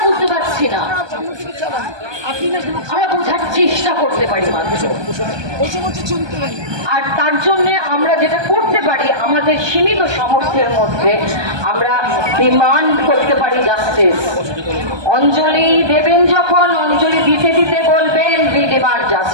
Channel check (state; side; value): late; left; 1.2 ms